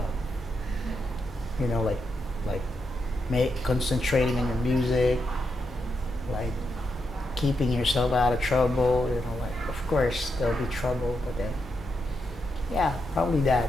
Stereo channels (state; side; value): normal; both; correlation 0.83